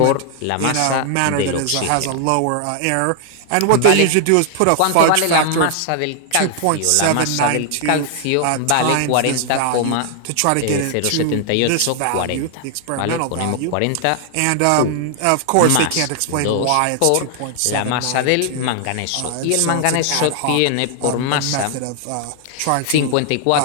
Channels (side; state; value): both; different; correlation 0.00